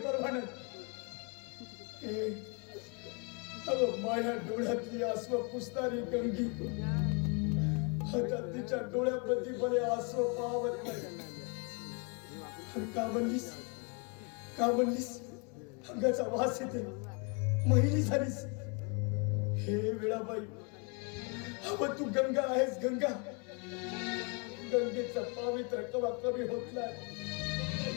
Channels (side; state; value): right; quieter; 34.9 dB